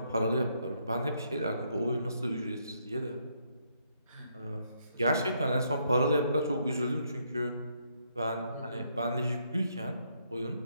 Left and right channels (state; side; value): inverted; both; correlation -0.73